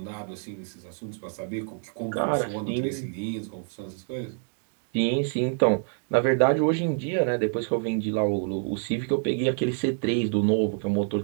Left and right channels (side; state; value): left; silent; 58 dB below the other